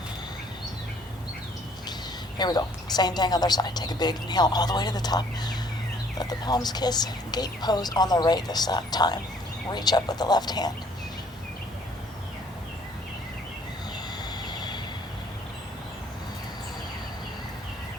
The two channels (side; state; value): both; normal; correlation 0.60